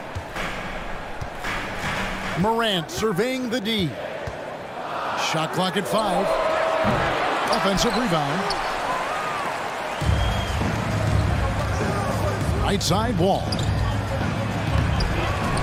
Morant surveying the D. Shot clock at 5. Offensive rebound. Right side, Wall.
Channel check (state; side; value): identical; both; correlation 1.00